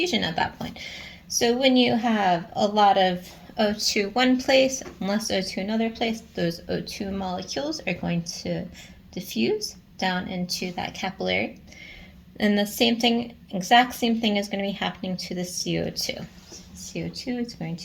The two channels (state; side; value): identical; both; correlation 1.00